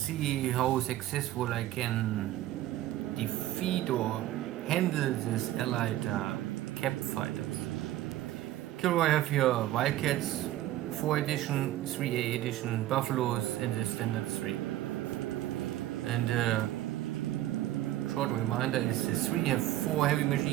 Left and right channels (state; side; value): quieter; left; 14.4 dB